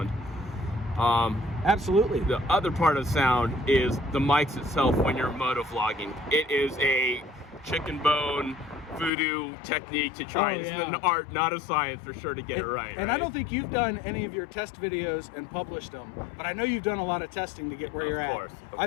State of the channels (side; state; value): right; drops out; at 9.1 s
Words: Absolutely. The other part of sound is the mics itself when you're motovlogging. It is a chicken bone voodoo technique to try. It's an art, not a science, for sure, to get it right. And I don't think you've done any of your test videos and published them, but I know you've done a lot of testing to get where you're at. Of course.